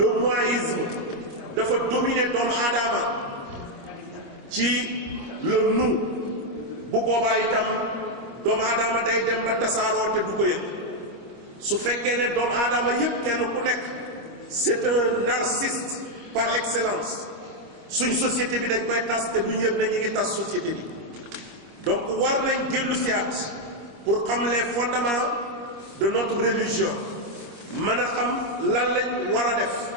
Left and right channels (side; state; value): left; late; 25 ms